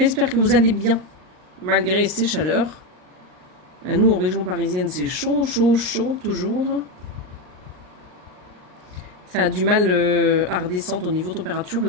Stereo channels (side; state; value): left; late; 39 ms